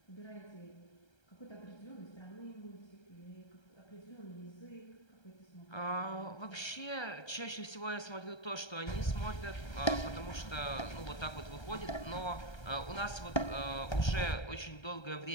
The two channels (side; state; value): right; late; 1.3 ms